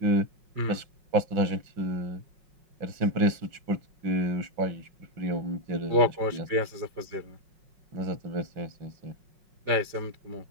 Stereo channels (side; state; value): left; late; 5.4 ms